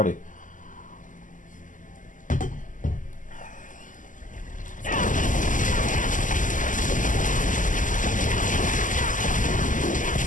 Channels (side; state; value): right; late; 0.38 ms